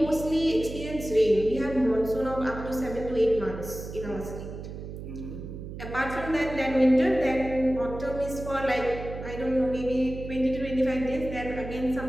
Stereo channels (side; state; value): right; noise; hum, 10 dB below the sound